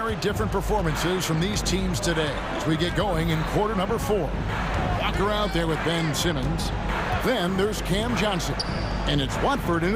different performances from these teams today as we get going in quarter number 4. Walker out there with Ben Simmons. Then there's Cam Johnson. And it's Watford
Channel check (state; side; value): identical; both; correlation 1.00